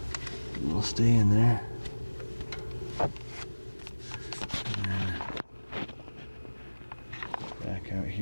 It'll stay in there. Back out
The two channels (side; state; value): both; inverted; correlation -1.00